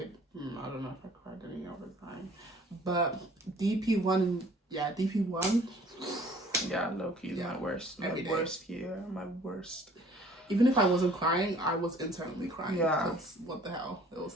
I don't know if I cried any other time. But DP1, DP1. Yeah, low-key is my worst. My worst year. My worst. Even if I wasn't crying, I was internally crying. Yeah. Because what the hell? It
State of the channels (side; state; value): both; normal; correlation 0.54